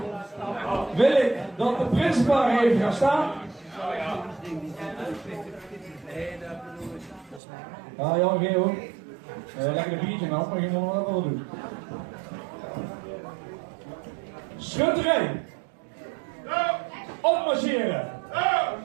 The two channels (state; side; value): drops out; left; at 7.4 s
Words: wil ik dat de principaal even gaan staan. Ja, Jan Geel. Lekker een biertje nou, maar je moet nog wel doen. Schutterij. Opmarcheren.